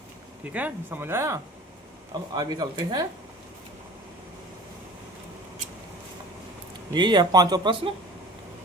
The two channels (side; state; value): both; normal; correlation 0.43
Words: ठीक है, समझ आया। अब आगे चलते हैं, यही है पांचवा प्रश्न।